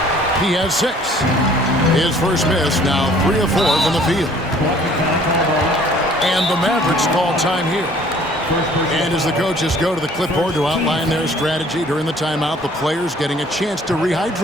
He has 6. His first miss, now 3 of 4 from the field. And the Mavericks call time here. And as the coaches go to the clipboard to outline their strategy during the timeout, the players getting a chance to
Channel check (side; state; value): both; normal; correlation 0.55